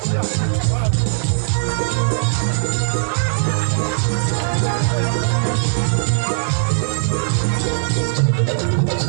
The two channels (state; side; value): silent; left; digital silence